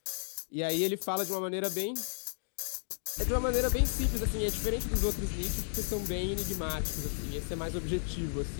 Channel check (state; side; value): silent; right; digital silence